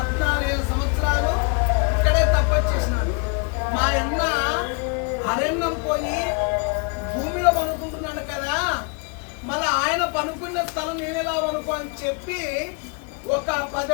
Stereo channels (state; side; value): quieter; right; 34.1 dB